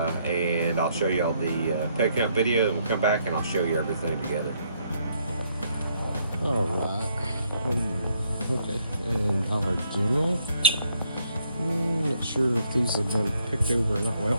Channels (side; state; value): both; inverted; correlation -0.71